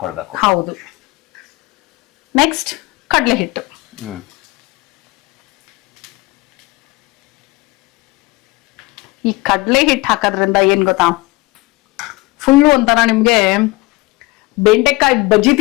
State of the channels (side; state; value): right; quieter; 22.8 dB